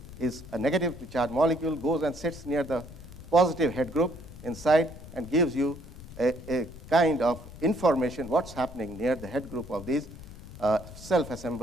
is a negatively charged molecule, goes and sits near the positive head group inside and gives you a kind of information what's happening near the head group of these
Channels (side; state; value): left; noise; rumble, 15 dB below the sound